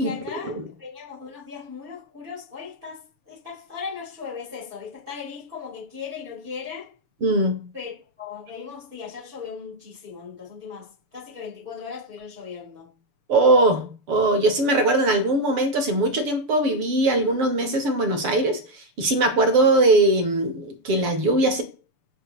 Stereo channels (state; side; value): late; left; 6.9 ms